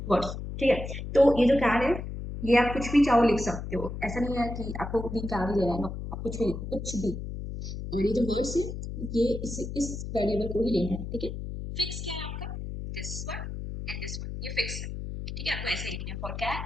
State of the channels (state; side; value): noise; left; hum, 7 dB below the sound